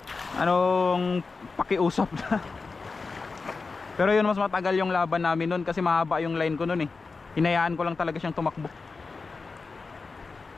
anong pakiusap na. Pero yun, mas matagal yung laban namin nun kasi mahaba yung line ko nun eh. Hinayaan ko lang talaga siyang tumakbo.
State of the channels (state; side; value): quieter; right; 4.3 dB